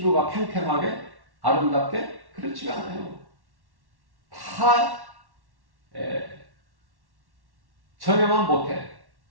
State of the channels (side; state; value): left; late; 1.1 ms